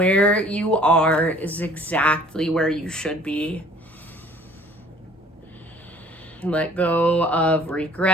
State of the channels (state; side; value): normal; both; correlation 0.54